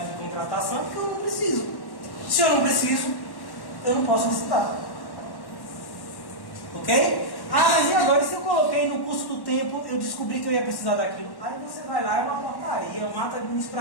de contratação, é porque eu não preciso. Se eu não preciso, eu não posso licitar. Ok? Ah, mas e agora? Se eu coloquei no curso do tempo, eu descobri que eu ia precisar daquilo. Aí você vai lá, é uma portaria, é um ato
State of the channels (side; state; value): right; late; 1.1 ms